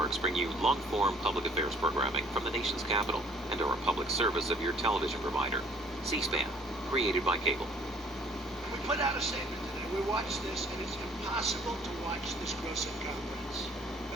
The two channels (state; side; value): normal; both; correlation 0.58